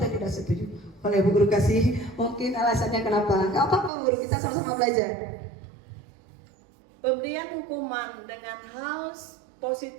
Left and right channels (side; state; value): left; drops out; at 3.9 s